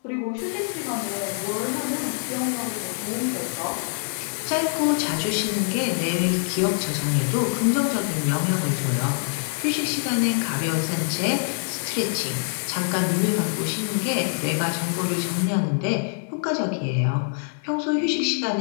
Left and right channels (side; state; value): right; silent; 62 dB below the other